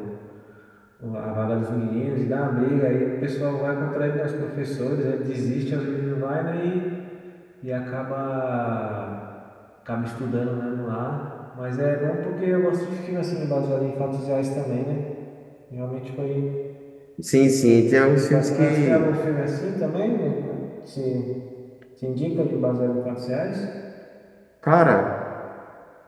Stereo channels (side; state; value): both; identical; correlation 1.00